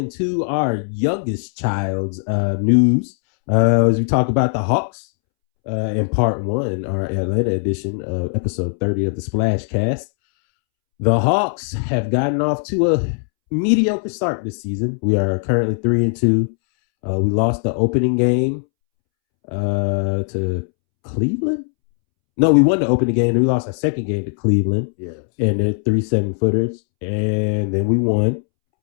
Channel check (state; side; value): silent; right; 66 dB below the other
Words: our youngest child's news as we talk about the Hawks in part 1, our Atlanta edition of episode 30 of the Splash Cast. The Hawks have gotten off to a mediocre start this season. We are currently 3-2. We lost the opening game to Cleveland. No, we won the opening game, and we lost our second game to Cleveland. Yes. And they're 3 7-footers. And then we won